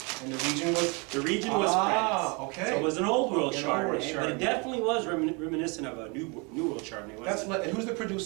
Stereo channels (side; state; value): left; quieter; 31.0 dB